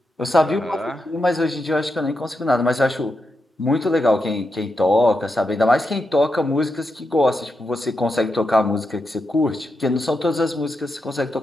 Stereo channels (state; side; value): normal; both; correlation 0.86